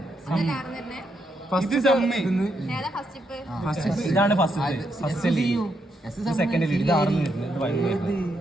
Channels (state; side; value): normal; both; correlation 0.79